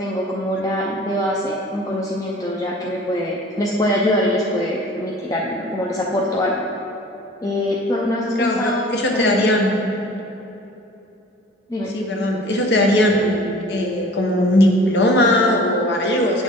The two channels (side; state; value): both; normal; correlation 0.46